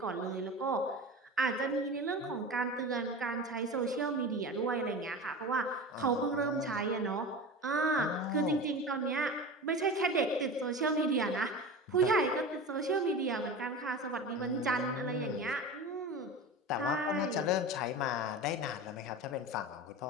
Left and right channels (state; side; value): normal; both; correlation 0.30